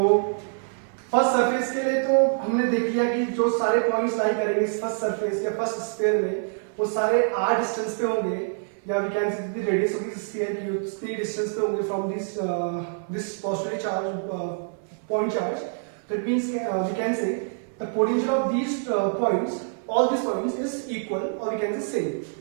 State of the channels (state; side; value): silent; left; 61 dB below the other